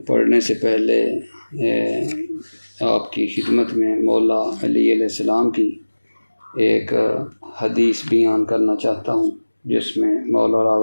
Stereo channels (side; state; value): both; inverted; correlation -1.00